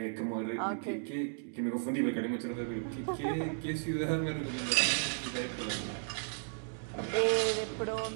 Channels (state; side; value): silent; left; digital silence